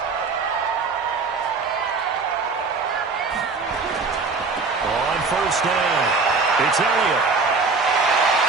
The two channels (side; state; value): left; quieter; 4.4 dB